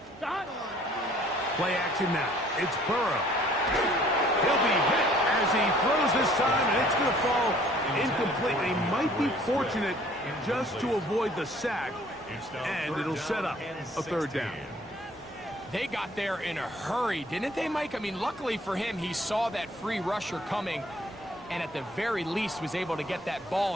Start. Play action now. It's Burrow. He'll be hit as he throws this time, and it's going to fall incomplete. He might be fortunate just to avoid the sack, and it'll set up a third down. They got there in a hurry, didn't they, Mike? I mean, luckily for him, he saw that free rusher coming, and at the very least was able to get that ball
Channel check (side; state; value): both; normal; correlation 0.57